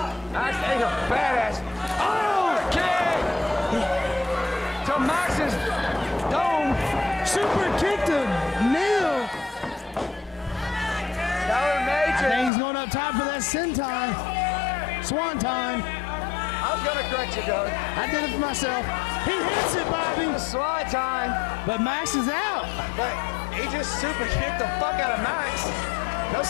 That's a badass. Oh, kick to Max's dome. Super kick to Neal. Tyler Matrix. I think he's going up top for that senton. Swan time. I was going to correct you, Doug. I did it for myself. He hits it, Bobby. Swan time. But Max is out. But he just super kicked the fuck out of Max. No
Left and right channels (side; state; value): right; drops out; at 12.5 s